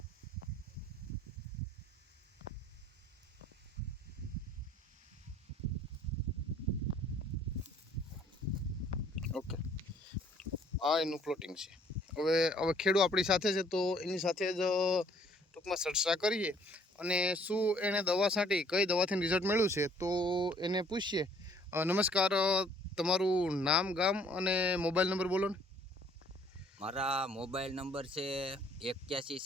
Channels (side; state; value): both; normal; correlation 0.60